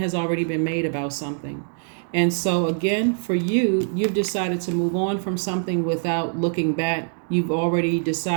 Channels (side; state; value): left; silent; digital silence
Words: already been made about something. And so again, for you, you've decided to move on from something without looking back. You've already